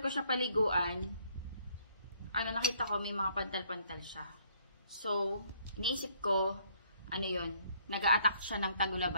ko siya paliguan, nakita ko may mga pantal-pantal siya. So, iniisip ko, yun, nag-a-attack siya ng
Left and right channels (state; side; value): inverted; both; correlation -0.65